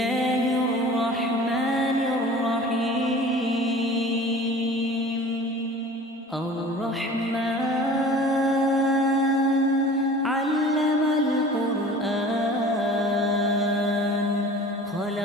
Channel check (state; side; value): normal; both; correlation 0.43